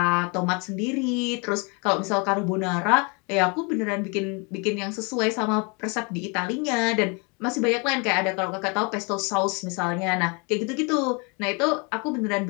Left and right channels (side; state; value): right; quieter; 32.1 dB